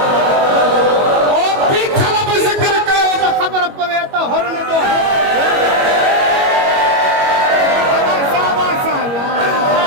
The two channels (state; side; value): late; left; 21 ms